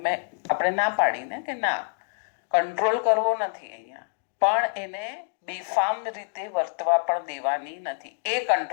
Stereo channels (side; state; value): right; silent; digital silence